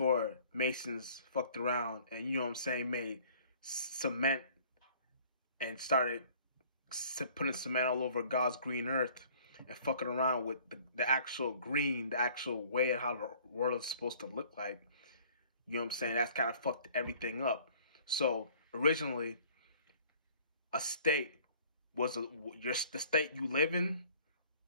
Masons fucked around and, you know what I'm saying, made cement and started putting cement all over God's green earth and fucking around with the actual green, the actual way of how the world is supposed to look like. You know what I'm saying? That's kind of fucked everything up. So originally, a state was the state you live in,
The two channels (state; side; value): inverted; both; correlation -0.53